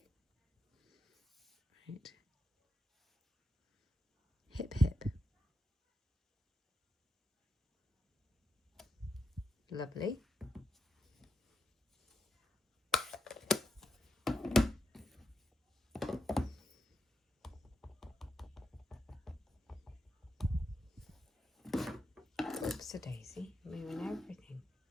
Right. Hip hip. Lovely. Oops a daisy, moving everything.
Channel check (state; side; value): normal; both; correlation 0.82